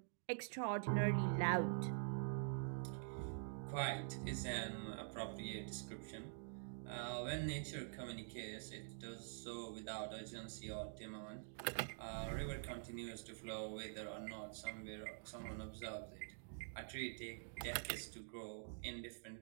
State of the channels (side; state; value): left; silent; digital silence